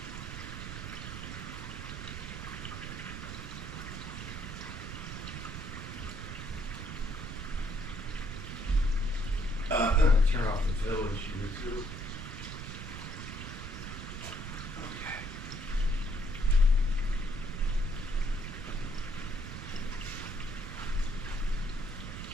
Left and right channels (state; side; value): noise; right; rumble, 7 dB below the sound